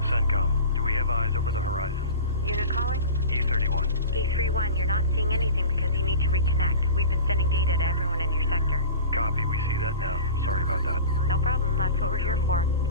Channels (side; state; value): both; inverted; correlation -0.34